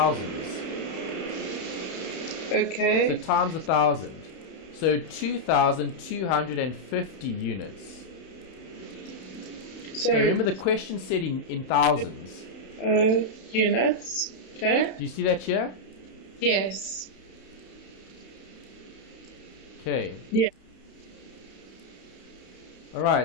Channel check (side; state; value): right; late; 31 ms